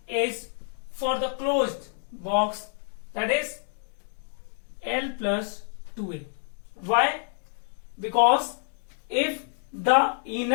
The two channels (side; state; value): right; silent; 59 dB below the other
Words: is for the closed box, that is L plus 2A. Why? Because if the